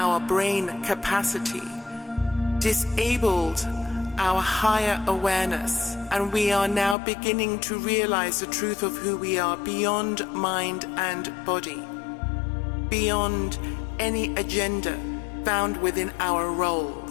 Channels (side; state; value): right; drops out; at 7.0 s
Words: brain capacity disabled our higher awareness, and we are now beginning to realize the truth of who we are beyond mind and body, beyond any agenda found within our